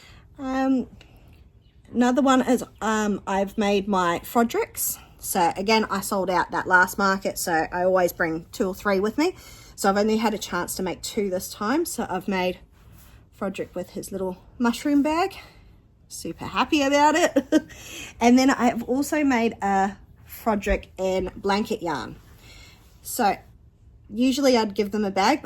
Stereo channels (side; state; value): both; identical; correlation 1.00